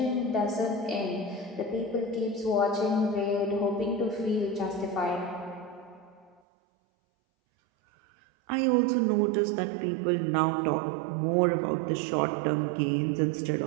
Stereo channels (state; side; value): drops out; left; at 6.4 s